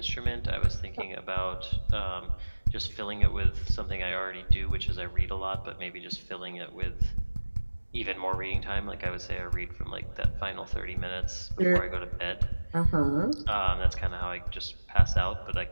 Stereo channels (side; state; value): both; inverted; correlation -1.00